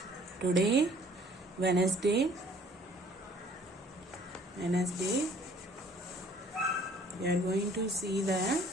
Today, Wednesday, we are going to see the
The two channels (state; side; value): normal; both; correlation 0.56